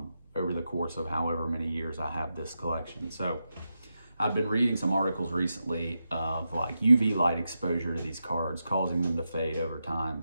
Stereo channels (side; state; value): both; inverted; correlation -0.88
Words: over the course of however many years I have this collection. So I've been reading some articles recently of like UV light exposure to these cards causing them to fade over